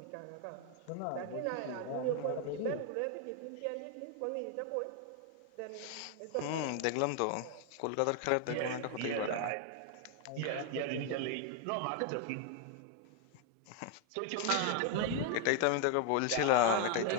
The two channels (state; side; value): different; both; correlation 0.00